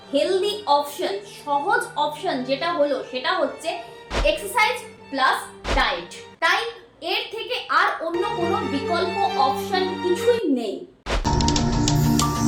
হেলদি অপশন, সহজ অপশন যেটা হলো সেটা হচ্ছে এক্সারসাইজ প্লাস ডায়েট। তাই এর থেকে আর অন্য কোনো বিকল্প অপশন কিছুই নেই।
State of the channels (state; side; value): identical; both; correlation 1.00